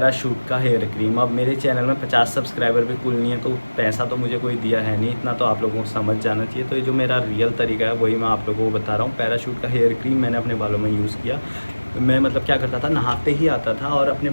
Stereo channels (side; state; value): both; inverted; correlation -1.00